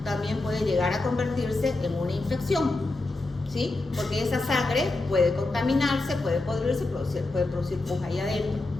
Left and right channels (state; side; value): quieter; right; 3.0 dB